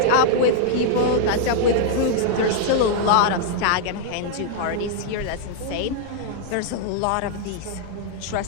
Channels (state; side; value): different; both; correlation -0.01